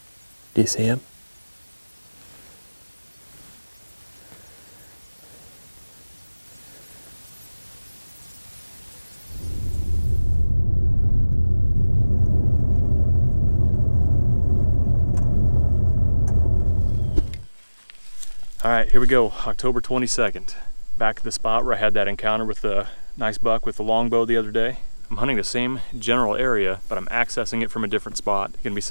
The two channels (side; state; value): both; inverted; correlation -1.00